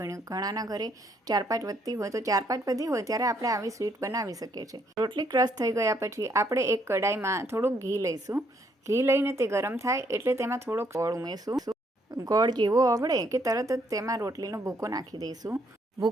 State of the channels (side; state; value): both; normal; correlation 0.70